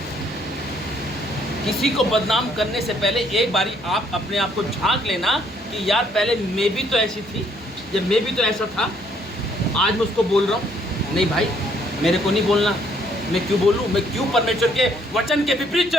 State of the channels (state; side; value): normal; both; correlation 0.66